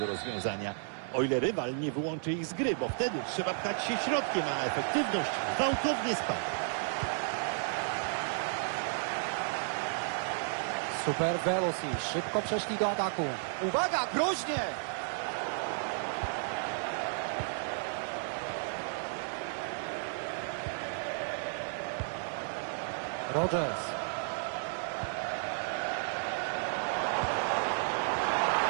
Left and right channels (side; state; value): left; silent; 56 dB below the other